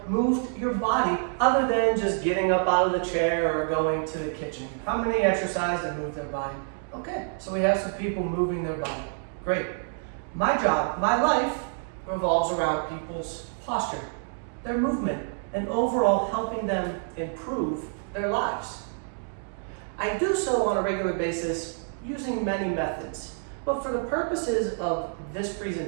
moved your body other than just getting up out of the chair or going to the kitchen? How many exercised and moved their body? Okay, so we have some people moving their body. Great. My job, my life revolves around people's posture, their movement, and overall helping them improve their lives. I do so on a regular basis using many methods. But for the purposes of this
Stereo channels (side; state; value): left; silent; 60 dB below the other